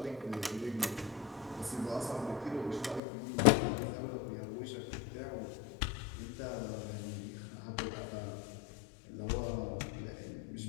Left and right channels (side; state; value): right; drops out; at 3.0 s